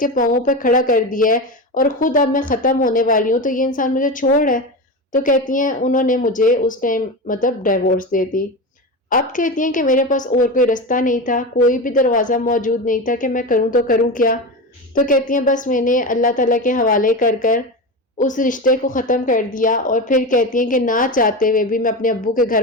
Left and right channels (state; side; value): normal; both; correlation 0.22